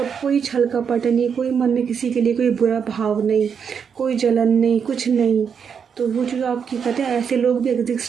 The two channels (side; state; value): left; quieter; 6.9 dB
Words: कोई छल कपट नहीं, कोई मन में किसी के लिए कोई बुरा भाव नहीं, कोई जलन नहीं, कुछ नहीं। तो वो जो आपकी कहते हैं ऐसे लोग भी